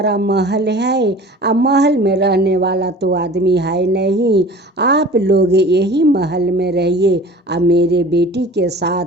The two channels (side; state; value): both; normal; correlation 0.42